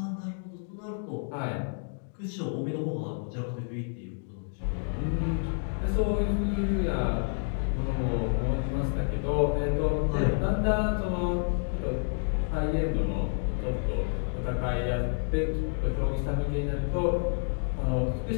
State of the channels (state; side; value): silent; right; 57 dB below the other